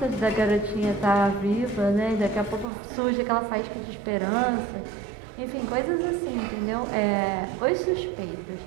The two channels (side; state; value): left; drops out; at 2.7 s